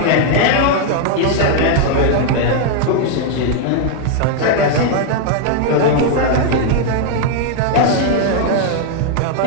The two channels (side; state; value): both; different; correlation 0.00